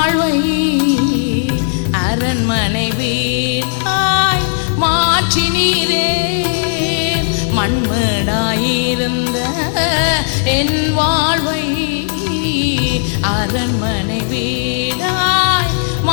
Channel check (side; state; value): right; silent; digital silence